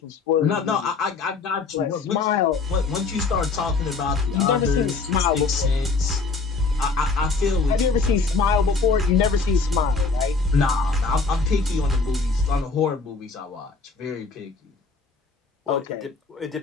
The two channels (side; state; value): right; quieter; 4.2 dB